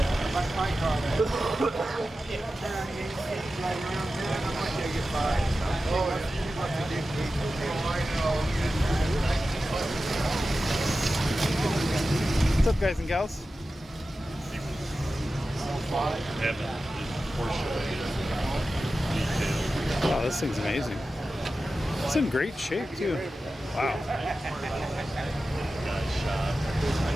What's up, guys and gals? Wow, this thing's amazing. It's in great shape too. Wow.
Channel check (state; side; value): normal; both; correlation 0.93